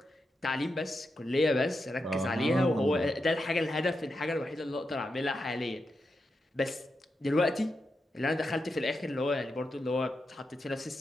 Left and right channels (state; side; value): normal; both; correlation 0.87